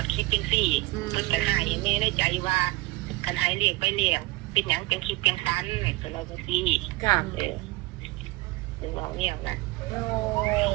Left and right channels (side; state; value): left; quieter; 20.3 dB